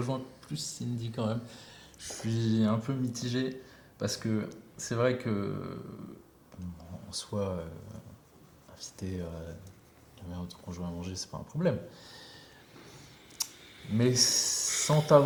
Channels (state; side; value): identical; both; correlation 1.00